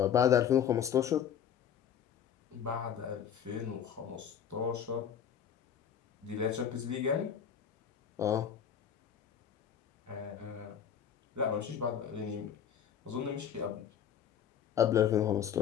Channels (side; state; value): right; quieter; 8.5 dB